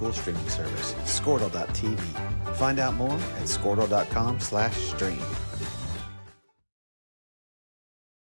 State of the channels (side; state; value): both; inverted; correlation -1.00